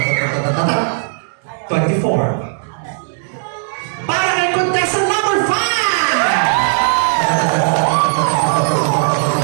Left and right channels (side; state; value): left; silent; 69 dB below the other